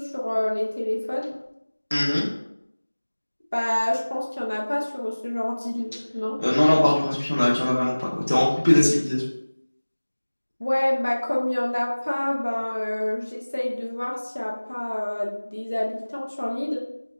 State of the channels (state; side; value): inverted; both; correlation -1.00